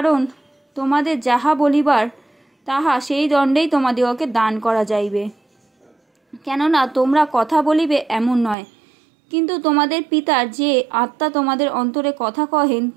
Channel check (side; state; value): left; drops out; at 8.6 s